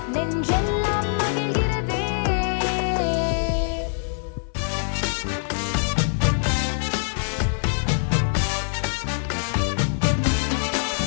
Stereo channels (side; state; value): right; silent; 63 dB below the other